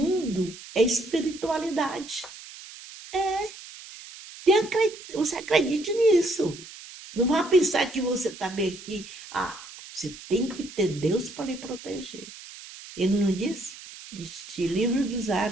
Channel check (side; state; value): right; noise; hiss, 16 dB below the sound